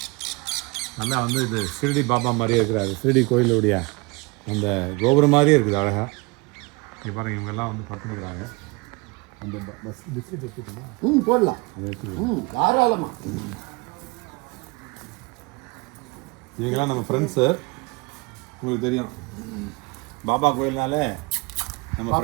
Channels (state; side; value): quieter; left; 26.7 dB